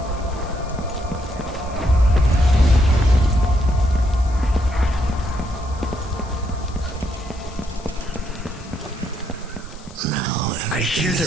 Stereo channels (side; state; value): left; noise; hiss, 22 dB below the sound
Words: I hear their